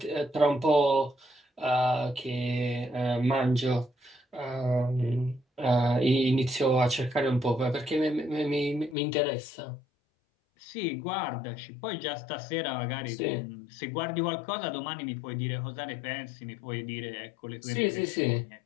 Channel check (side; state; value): right; drops out; at 9.0 s